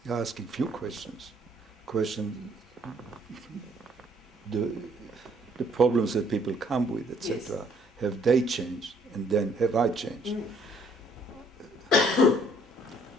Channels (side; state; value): both; normal; correlation 0.64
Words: You're asking few questions. Question the the problems that people come with, etc. Yes. Have they changed, and then have I changed?